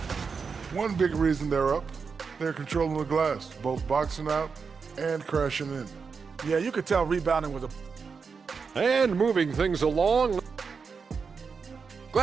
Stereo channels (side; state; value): left; quieter; 5.4 dB